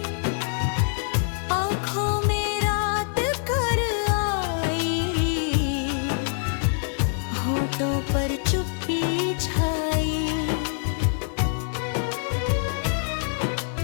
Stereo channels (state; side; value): silent; right; 57 dB below the other